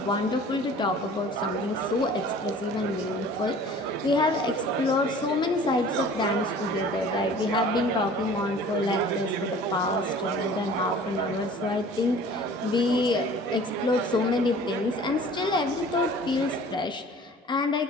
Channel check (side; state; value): both; normal; correlation 0.46